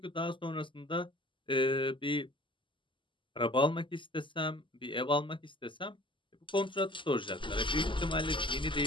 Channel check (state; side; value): late; right; 0.24 ms